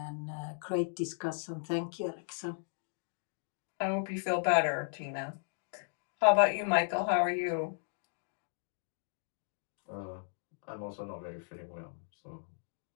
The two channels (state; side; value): silent; right; digital silence